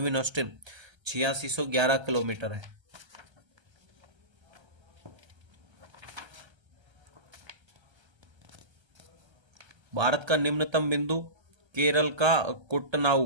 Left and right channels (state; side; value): late; left; 1.3 ms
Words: ऑस्टिन 8611 किलोमीटर है। भारत का निम्नतम बिंदु केरल का